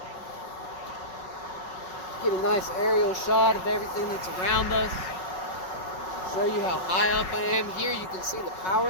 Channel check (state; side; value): late; right; 5.3 ms